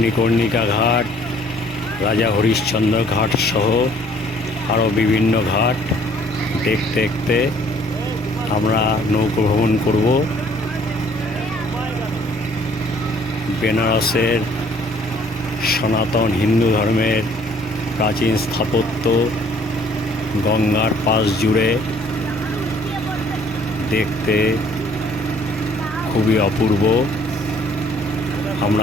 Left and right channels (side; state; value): both; normal; correlation 0.59